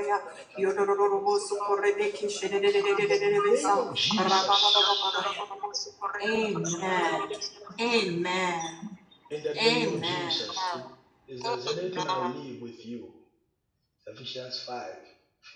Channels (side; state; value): both; identical; correlation 1.00